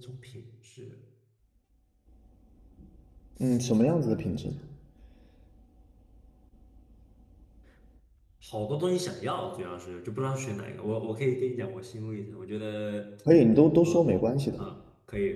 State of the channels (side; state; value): both; identical; correlation 1.00